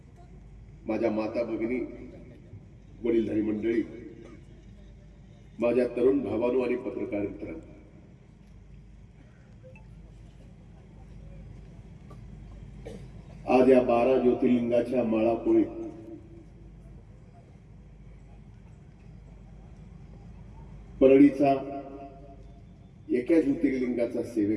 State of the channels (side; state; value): both; identical; correlation 1.00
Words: माझ्या माता भगिनी, वडीलधारी मंडळी, माझ्या तरुण भावांनो आणि पत्रकार मित्रांनो, आज या 12 ज्योतिर्लिंगाच्या माळापोळीत परळीचा एका ज्योतिर्लिंगाचा